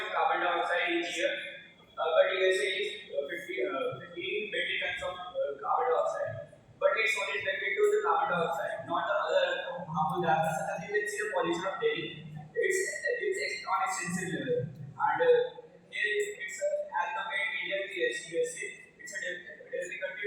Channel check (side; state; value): both; identical; correlation 1.00